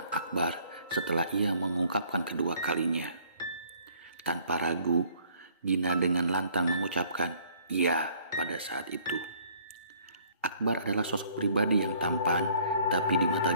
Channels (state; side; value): inverted; both; correlation -0.59